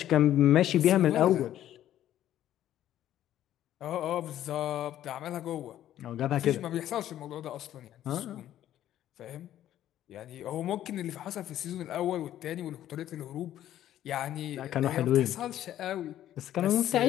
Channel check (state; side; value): quieter; right; 12.2 dB